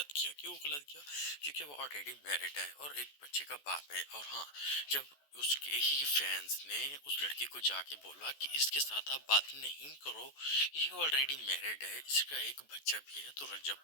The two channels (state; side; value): late; right; 14 ms